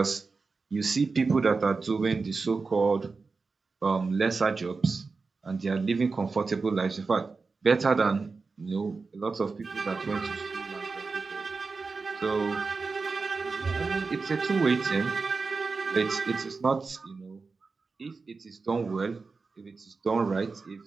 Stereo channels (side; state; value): left; quieter; 4.3 dB